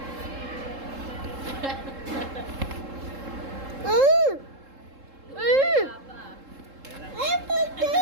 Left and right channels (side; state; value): left; late; 3.7 ms